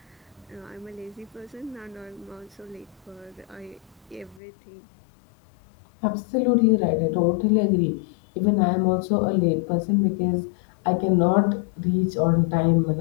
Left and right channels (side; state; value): right; drops out; at 4.4 s